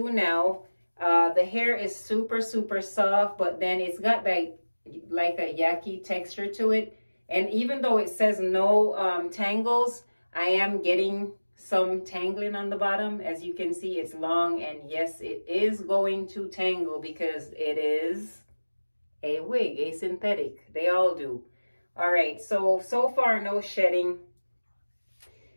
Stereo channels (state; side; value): inverted; both; correlation -1.00